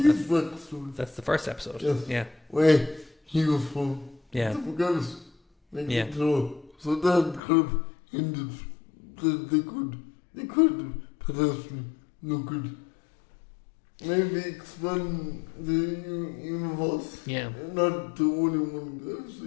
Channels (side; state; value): right; drops out; at 7.4 s